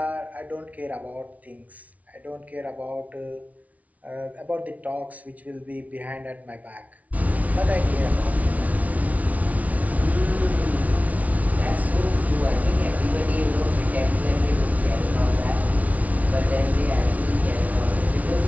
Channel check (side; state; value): left; late; 0.070 ms